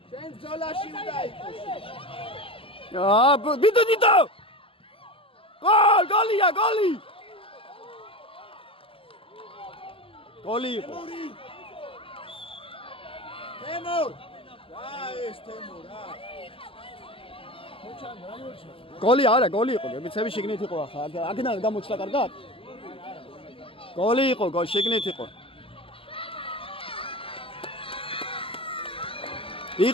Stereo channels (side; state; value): right; late; 0.26 ms